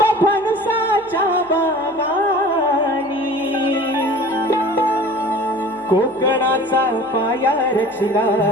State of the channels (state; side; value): noise; right; hum, 28 dB below the sound